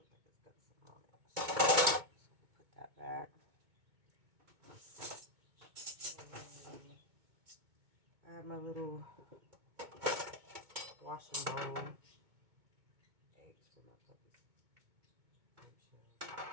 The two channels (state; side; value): late; left; 2.2 ms